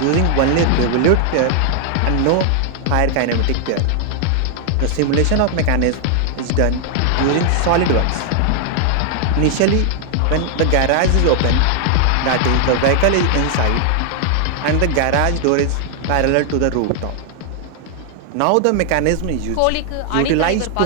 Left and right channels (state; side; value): different; both; correlation 0.00